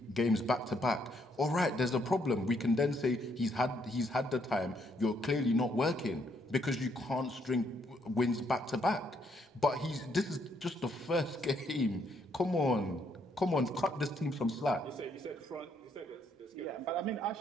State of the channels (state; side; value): normal; both; correlation 0.72